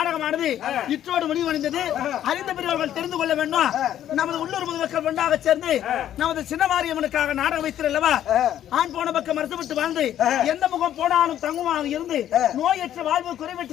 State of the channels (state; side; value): quieter; right; 11.3 dB